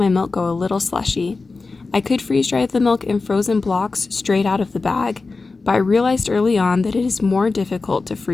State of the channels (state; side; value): quieter; right; 3.9 dB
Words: milk go a little slushy. I could freeze dry the milk in frozen blocks straight out of the bag, but I realized early on that it is more difficult to